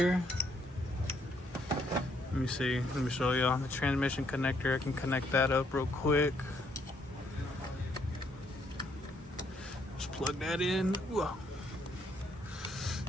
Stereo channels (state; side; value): normal; both; correlation 0.71